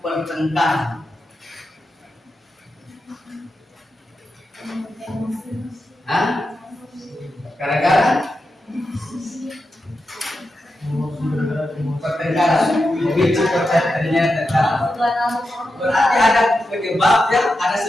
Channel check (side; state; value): both; normal; correlation 0.89